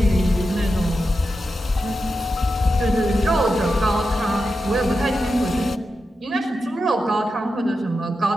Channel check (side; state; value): both; normal; correlation 0.89